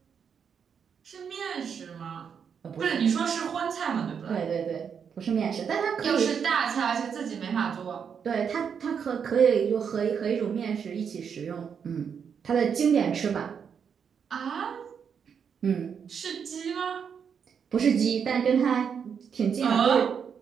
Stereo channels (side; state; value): left; quieter; 7.1 dB